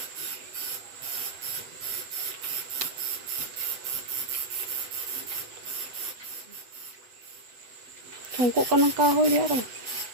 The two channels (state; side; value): late; left; 8.1 ms